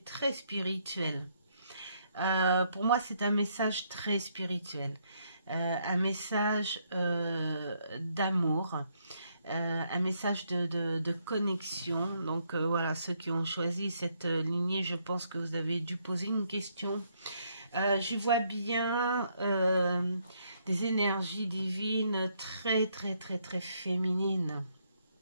très spirituel. Pour moi, c'est un message très spirituel. Un message d'amour. Un message de connexion. Donc voilà, ceux qui ont choisi cette lignée, je pense que vous avez dû poser une question. Je vois bien des énergies divines très féminines.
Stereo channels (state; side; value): inverted; both; correlation -0.73